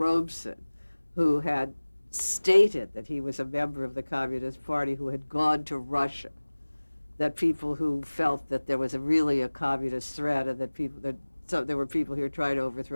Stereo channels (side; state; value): both; inverted; correlation -1.00